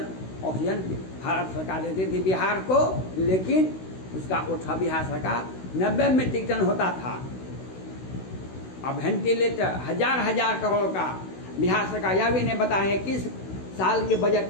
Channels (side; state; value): right; late; 16 ms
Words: ऑक्सीजन भारत सरकार देती थी बिहार को, लेकिन उसका उठा बिहार सरकार 90 मीट्रिक टन होता था। अब वेंटिलेटर हजार करोड़ का बिहार सरकार यह भी नहीं बताए किस साल के